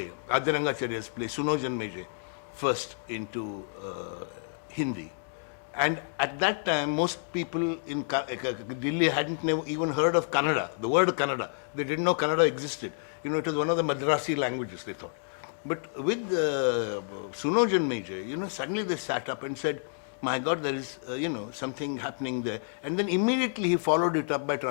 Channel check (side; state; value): right; silent; digital silence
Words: Adyarangacharya's play, Sunojan Meje, first into Hindi. And at that time, most people in Delhi hadn't even heard of Kannada, the word Kannada. They didn't know Kannada existed. It was one of the Madrasi languages, they thought. But with Sunojan Meje, suddenly they sat up and said, my God, there is, something happening there. And then immediately he followed it up by